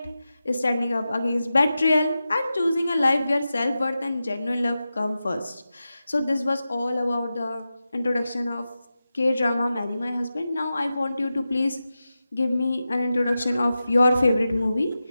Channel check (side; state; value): both; inverted; correlation -0.92